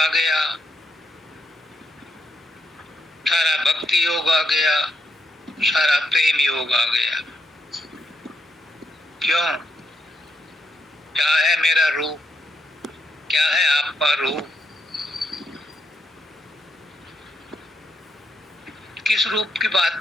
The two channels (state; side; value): normal; both; correlation 0.80